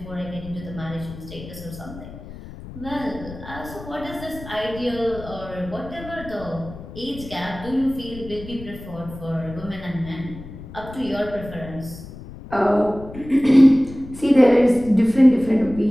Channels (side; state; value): left; noise; rumble, 14 dB below the sound